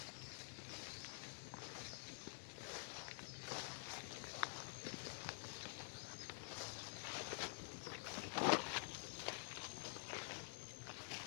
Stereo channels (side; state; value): right; silent; digital silence